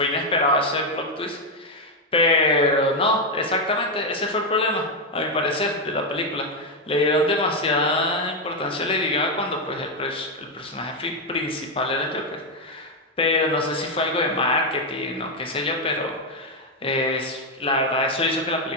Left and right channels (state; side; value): normal; both; correlation 0.04